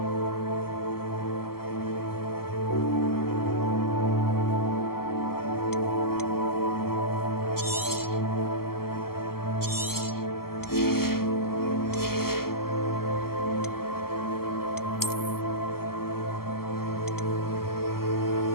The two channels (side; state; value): right; late; 0.93 ms